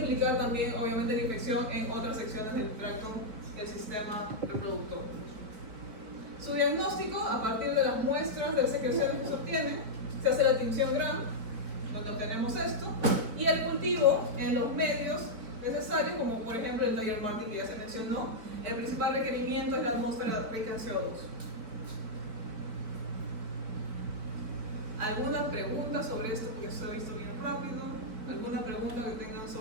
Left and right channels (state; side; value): late; left; 4.6 ms